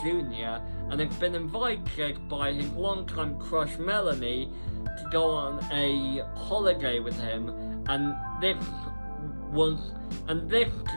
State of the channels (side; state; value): both; inverted; correlation -1.00